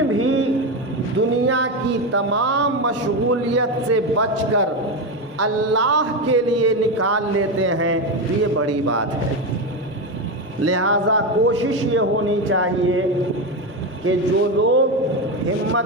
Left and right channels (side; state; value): both; normal; correlation 0.14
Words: بھی دنیا کی تمام مشغولیت سے بچ کر اللہ کے لیے نکال لیتے ہیں تو یہ بڑی بات ہے۔ لہذا کوشش یہ ہونی چاہیے کہ جو لوگ ہمت